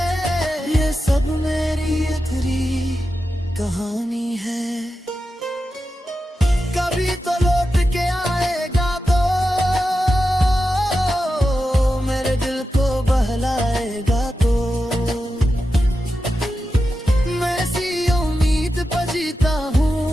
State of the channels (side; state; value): both; normal; correlation 0.90